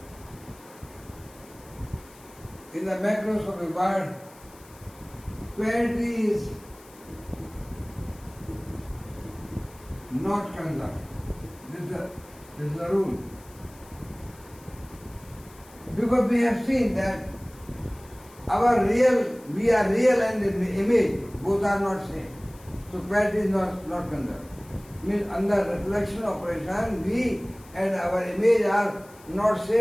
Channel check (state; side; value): noise; left; hiss, 24 dB below the sound